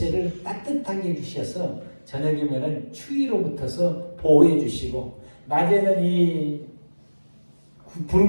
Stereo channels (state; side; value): inverted; both; correlation -1.00